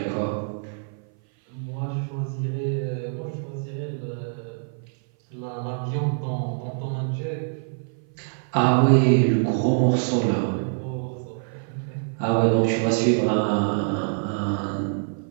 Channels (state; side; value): silent; left; 57 dB below the other